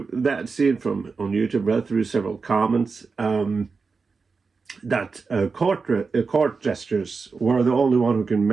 that scene on YouTube. Read through several comments that court gestures were the only one who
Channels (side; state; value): left; quieter; 4.7 dB